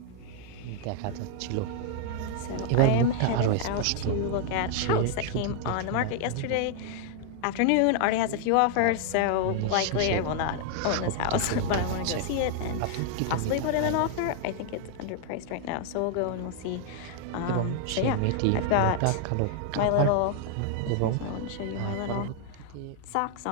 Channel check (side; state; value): both; different; correlation 0.00